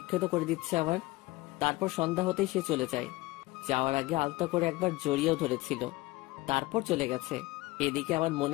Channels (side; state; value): right; quieter; 20.3 dB